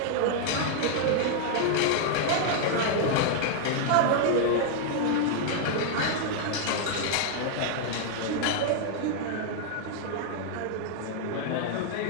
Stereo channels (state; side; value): different; both; correlation -0.01